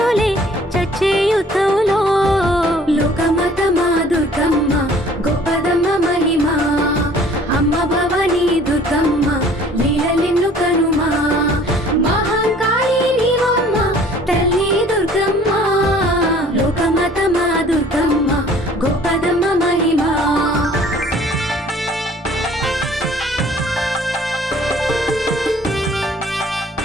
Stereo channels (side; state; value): both; normal; correlation 0.53